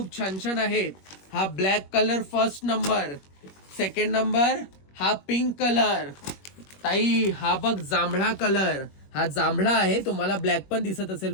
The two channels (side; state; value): right; late; 21 ms